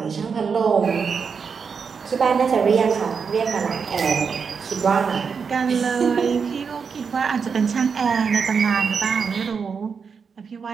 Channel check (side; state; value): left; quieter; 5.9 dB